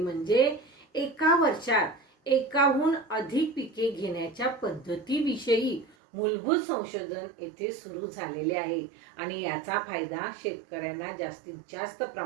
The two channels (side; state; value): left; drops out; at 6.0 s